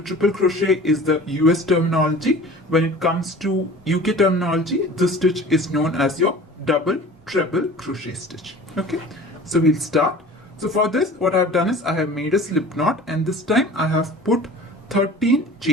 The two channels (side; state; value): both; normal; correlation 0.42